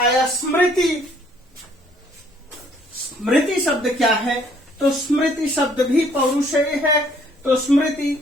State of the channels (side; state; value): both; normal; correlation 0.63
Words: स्मृति। स्मृति शब्द क्या है? तो स्मृति शब्द भी पौरुषेय है। तो